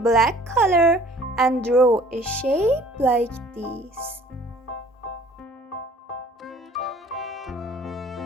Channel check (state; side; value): normal; both; correlation 0.53